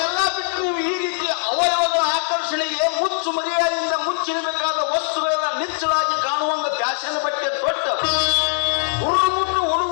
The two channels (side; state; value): right; silent; 65 dB below the other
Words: ಬಿಟ್ಟು ನೀವು ಈ ರೀತಿಯ ಅವಯವಗಳ ಆಕರ್ಷಣೆಗೆ ಮುಚ್ಚು ಮರ್ಯಾದೆಯಿಂದ ಮುಚ್ಚಿರಬೇಕಾದ ವಸ್ತುಗಳೆಲ್ಲ ನಿಚ್ಚಳಾಗಿ ಕಾಣುವಂಗ ಫ್ಯಾಷನ್ ಬಟ್ಟೆ ತೊಟ್ಟು ಹುಡುಗರು